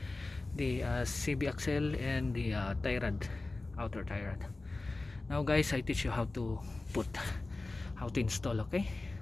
the CB axle and the tie rod, outer tie rod. Now guys, I teach you how to install. Okay,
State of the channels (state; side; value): quieter; right; 3.2 dB